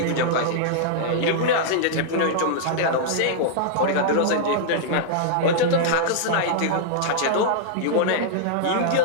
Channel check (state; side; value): different; both; correlation -0.01